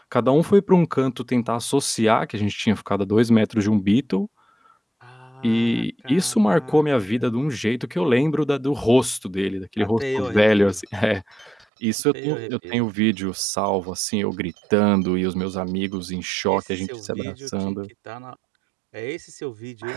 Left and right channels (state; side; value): drops out; left; at 11.7 s